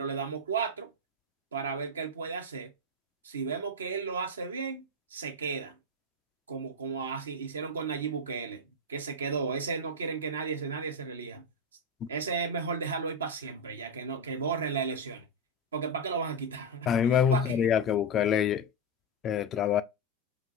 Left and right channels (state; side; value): normal; both; correlation 0.08